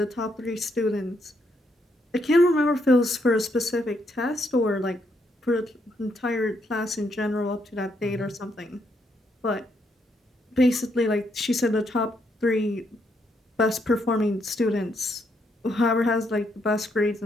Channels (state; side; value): normal; both; correlation 0.76